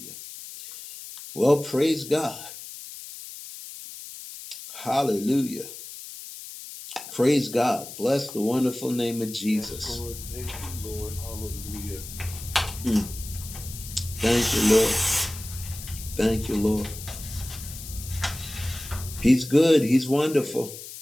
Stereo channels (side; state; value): left; noise; hiss, 12 dB below the sound